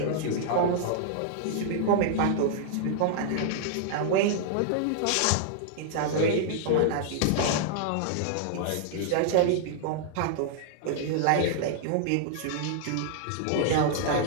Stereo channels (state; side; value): different; both; correlation -0.01